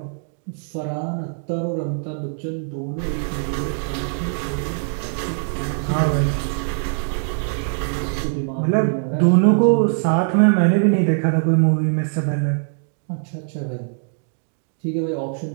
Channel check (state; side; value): silent; left; digital silence